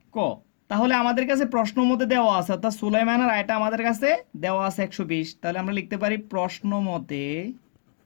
ক। তাহলে আমাদের কাছে প্রশ্ন মতে দেওয়া আছে, অর্থাৎ সুলাইমানের আয়টা আমাদের কাছে দেওয়া আছে 120। তাহলে আমরা লিখতে পারি প্রশ্ন মতে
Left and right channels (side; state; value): right; silent; 62 dB below the other